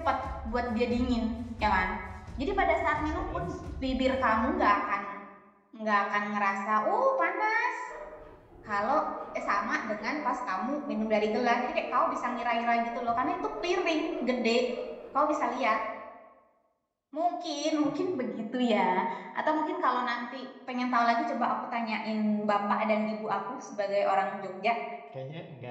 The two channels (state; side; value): identical; both; correlation 1.00